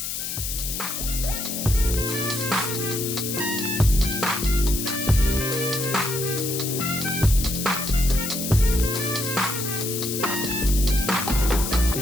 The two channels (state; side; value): noise; left; hiss, 4 dB below the sound